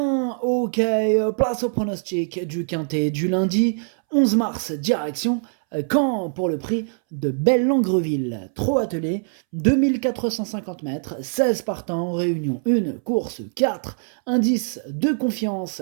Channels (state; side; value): silent; left; 64 dB below the other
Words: Ok, place au pronostic du quintet du lundi 11 mars, direction Caen pour le prix de Belle-Langreville. Trop attelé, 2450 mètres, 16 partants, réunion 1, course 4, indice de confiance